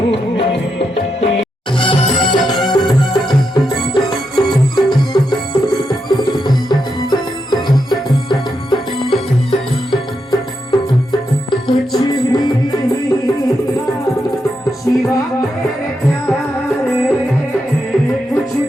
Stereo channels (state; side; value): normal; both; correlation 0.84